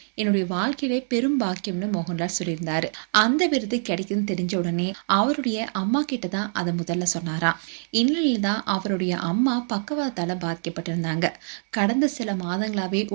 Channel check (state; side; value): silent; left; digital silence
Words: என்னுடைய வாழ்க்கையிலே பெரும் பாக்கியம்னு மோகன்லால் சொல்லியிருந்தாரு. அந்த விருது கிடைக்குதுன்னு தெரிஞ்ச உடனே அவருடைய அம்மா கிட்ட தான் அதை முதல்ல சொன்னாராம். இந்நிலையில தான் அவருடைய அம்மா பக்கவாதால பாதிக்கப்பட்டிருந்தாங்க. கடந்த சில மாதங்களாவே